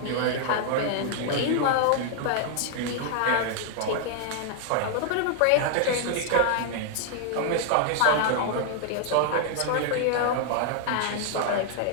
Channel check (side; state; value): both; different; correlation 0.00